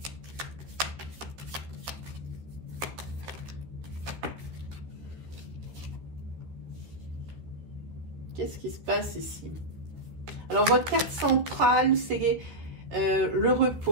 Qu'est-ce qui se passe ici? Alors, votre carte centrale, c'est le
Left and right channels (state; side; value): late; left; 13 ms